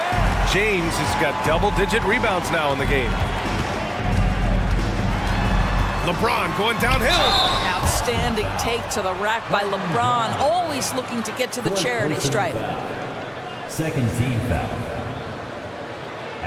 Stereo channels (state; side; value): identical; both; correlation 1.00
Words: James has got double-digit rebounds now in the game. LeBron going downhill. Outstanding take to the rack by LeBron. Always looking to get to the charity stripe. Second team foul.